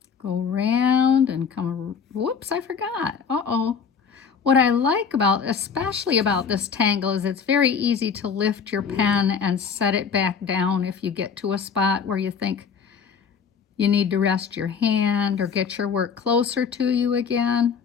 Go round and come, whoops, I forgot. Uh-oh. What I like about, especially about this tangle, is it's very easy to lift your pen and set it back down if you get to a spot where you think you need to rest your hand or get your work closer to you again.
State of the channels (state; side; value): quieter; right; 6.4 dB